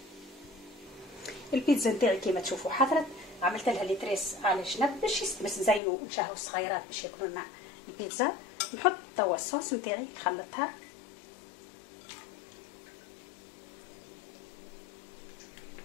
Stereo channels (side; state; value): right; drops out; at 5.8 s